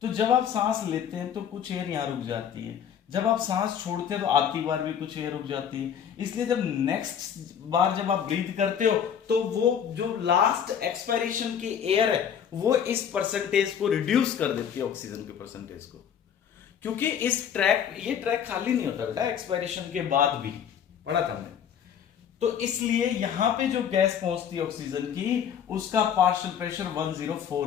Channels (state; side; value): quieter; right; 8.4 dB